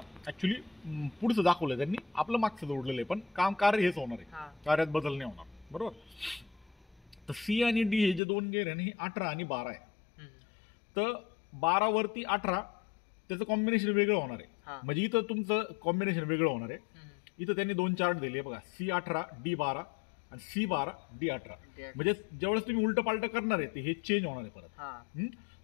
ऍक्च्युली पुढचं दाखवलंय त्यांनी, आपलं मागचं जोडलेलं आहे, पण कार्य हेच होणार आहे, कार्यात बदल नाही होणार, बरोबर. तर C आणि D हे जे 2 गेअर आहे ना, हे 18 आणि 12 आहे. तर 12 वरती 18 त्याचं कॉम्बिनेशन वेगळं होणार आहे. म्हणजे इथं तुमचं कॉम्बिनेशन वेगळं होणार आहे. इथं त्यांनी 2 चार्ट दिले बघा, C18 D12 आणि C12 D18. म्हणजे ज्यावेळेस तुम्ही उलट पालट करणार आहे ते हे चेंज होणार आहे परत.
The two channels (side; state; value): right; drops out; at 8.2 s